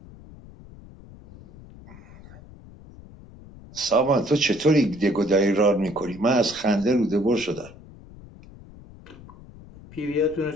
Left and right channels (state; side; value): noise; left; rumble, 20 dB below the sound